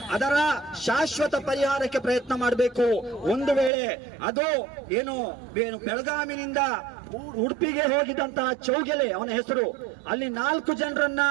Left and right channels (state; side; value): drops out; left; at 3.7 s